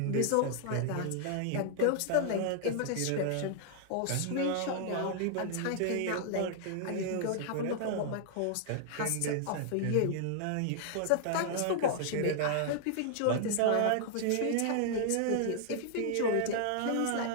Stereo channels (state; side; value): different; both; correlation -0.01